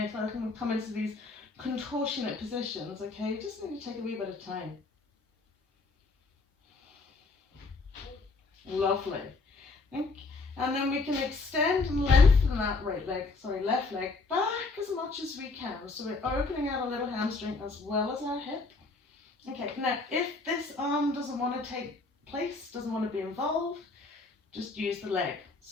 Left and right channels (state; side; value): quieter; right; 3.7 dB